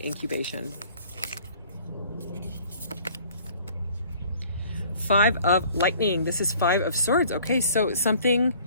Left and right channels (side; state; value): both; inverted; correlation -0.54